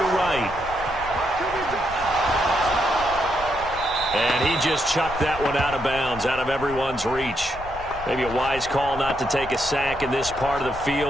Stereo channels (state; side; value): noise; left; rumble, 13 dB below the sound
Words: right. And he just chucked that one out of bounds, out of everyone's reach. Maybe a wise call not to take a sack in this part of the